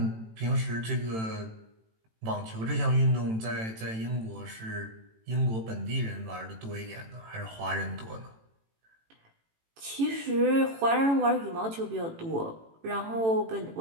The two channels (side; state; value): left; late; 18 ms